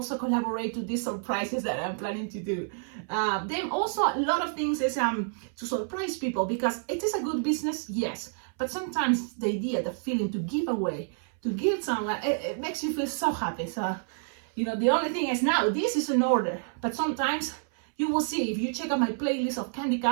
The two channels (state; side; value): silent; left; 59 dB below the other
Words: collaborate to these surprises that I'm planning to do. Then also a lot of things is to surprise people, because it is a good business, yes, but sometimes the idea, the feeling to give away, to give someone, it makes you feel so happy. So, you know, the only thing is now this is an order, but sometimes you will see, if you check out my playlist of candy